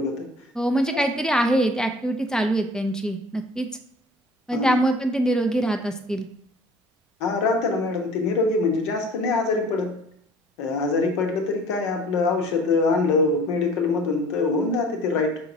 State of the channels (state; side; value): normal; both; correlation 0.49